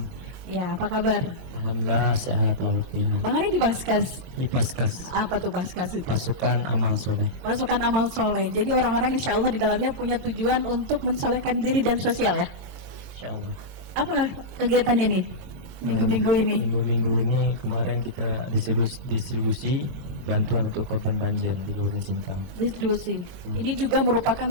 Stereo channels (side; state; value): left; late; 22 ms